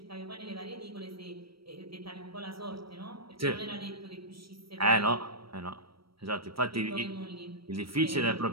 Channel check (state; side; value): late; left; 0.75 ms